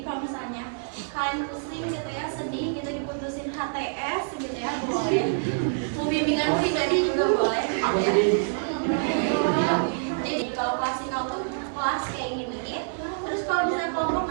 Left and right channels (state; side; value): silent; left; 60 dB below the other